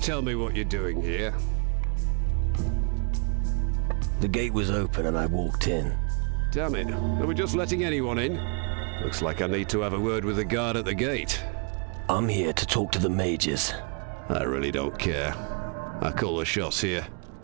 tell me what you're doing here. The gate was open and I walked in. Damn it. Are we just letting anyone in? Looks like I need to have a word with the guard at the gate. I'm here to talk to the mages. I really don't care. I call the shots here.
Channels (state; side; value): quieter; left; 36.7 dB